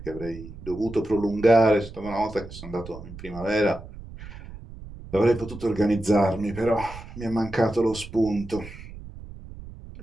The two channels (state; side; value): noise; right; rumble, 14 dB below the sound